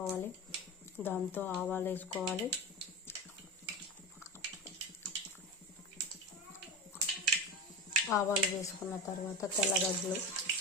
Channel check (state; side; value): normal; both; correlation 0.23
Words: దాంతో ఆవాలు వేసుకోవాలి. ఆవాలు వేసుకున్న తర్వాత తెల్లగడ్డలు,